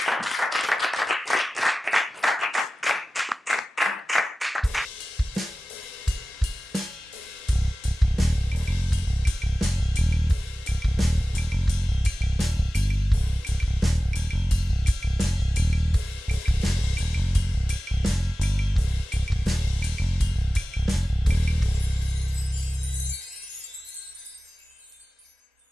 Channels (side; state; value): both; normal; correlation 0.96